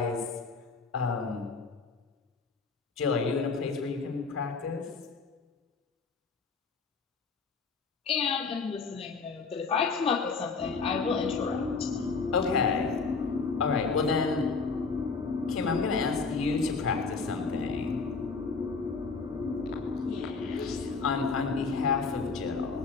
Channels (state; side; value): quieter; right; 4.6 dB